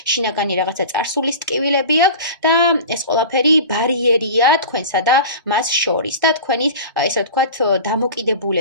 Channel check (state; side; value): inverted; both; correlation -0.34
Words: შინაგანი რაღაცა წარსულის ტკივილები აქვს და ეს ყველაფერი ბარიერია თქვენსა და მას შორის და თქვენი ესე ვთქვათ,